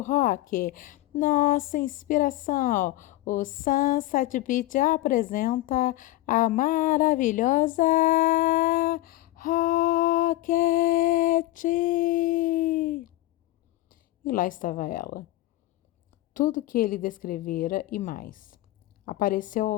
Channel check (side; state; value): right; quieter; 16.7 dB